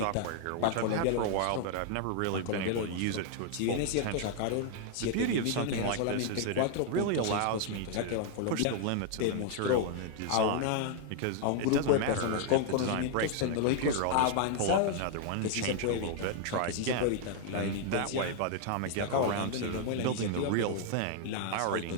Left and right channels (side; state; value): both; different; correlation 0.00